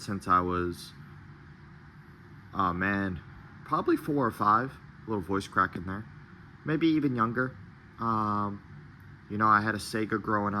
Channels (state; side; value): identical; both; correlation 1.00